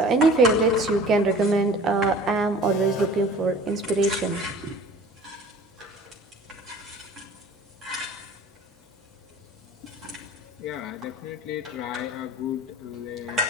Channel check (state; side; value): normal; both; correlation 0.45